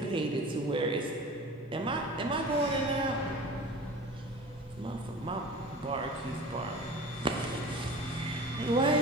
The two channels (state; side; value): normal; both; correlation 0.38